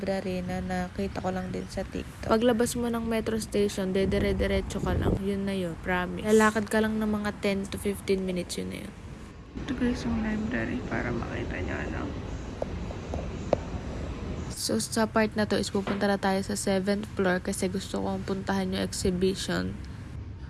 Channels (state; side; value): identical; both; correlation 1.00